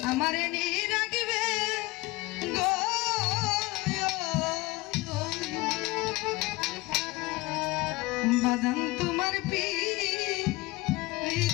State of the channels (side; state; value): right; quieter; 21.7 dB